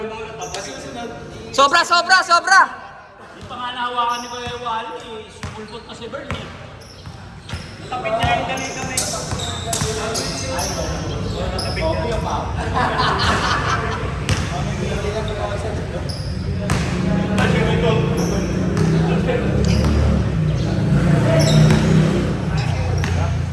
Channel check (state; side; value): identical; both; correlation 1.00